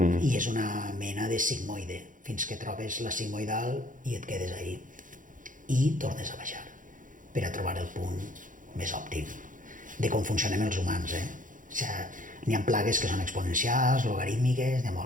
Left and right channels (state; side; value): late; left; 0.38 ms